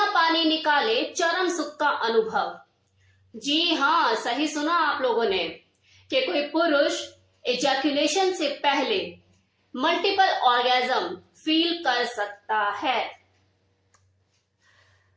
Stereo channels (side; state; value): both; identical; correlation 1.00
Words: पानी निकाले चरम सुख का अनुभव। जी हाँ, सही सुना आप लोगों ने कि कोई पुरुष एजैकुलेशन से पहले मल्टीपल ऑर्गेजम फील कर सकता है।